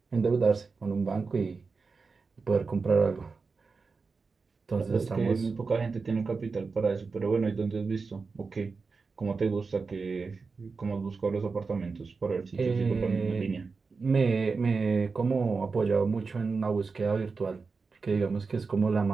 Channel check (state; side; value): quieter; left; 4.6 dB